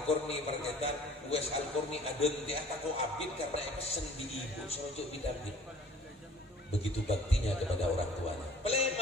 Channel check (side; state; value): both; normal; correlation 0.52